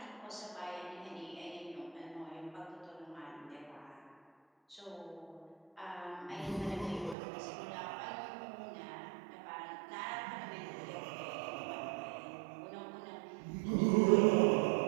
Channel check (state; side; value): drops out; left; at 7.2 s